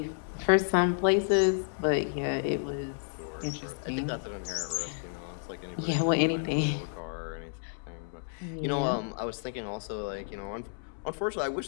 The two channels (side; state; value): right; silent; digital silence